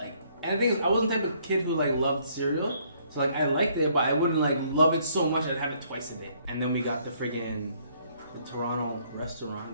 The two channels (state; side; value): inverted; both; correlation -0.66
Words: and the thing is, I wasn't the type of kid who like loved cereal. So like I liked it, but I wouldn't like love it so much I'd have it twice a day. And then we got the Toronto